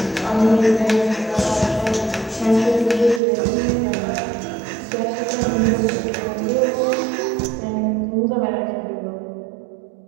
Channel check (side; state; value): left; drops out; at 3.2 s